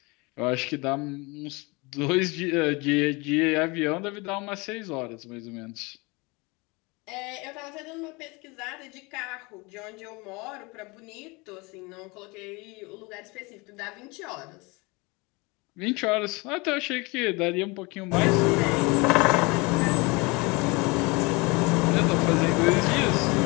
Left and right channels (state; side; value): quieter; right; 26.3 dB